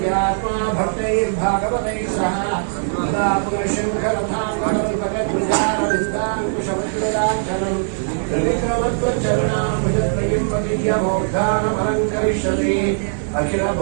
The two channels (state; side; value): silent; left; digital silence